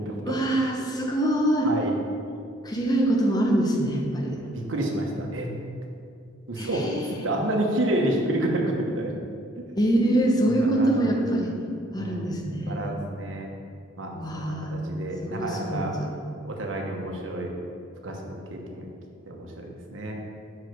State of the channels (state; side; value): normal; both; correlation 0.62